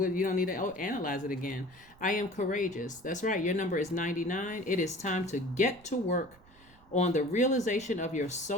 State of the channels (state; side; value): noise; right; rumble, 26 dB below the sound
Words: don't need to analyze it again. I am courageous. That's right. Your number is 99. It is time to get to work on the realization of your